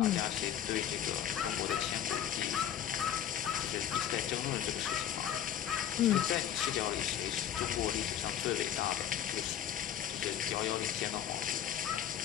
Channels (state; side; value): quieter; right; 10.3 dB